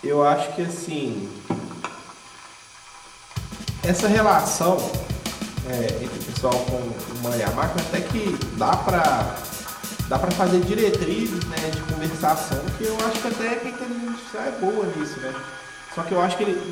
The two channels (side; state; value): both; identical; correlation 1.00